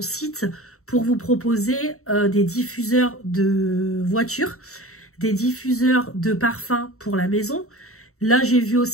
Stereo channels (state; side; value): late; right; 0.64 ms